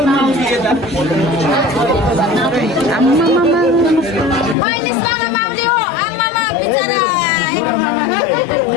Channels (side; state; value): right; drops out; at 4.5 s